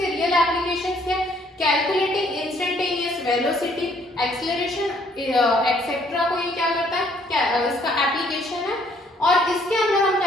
रियल एप्लीकेशंस क्या, calculating instantaneous velocity, acceleration etcetera को ये क्या करता है, क्या इसका एप्लीकेशन है। और इसके अंदर हम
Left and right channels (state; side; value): normal; both; correlation 0.64